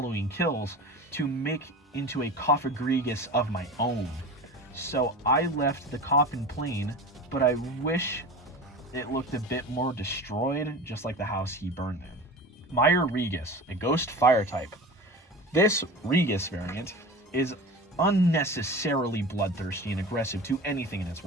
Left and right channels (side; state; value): both; normal; correlation 0.33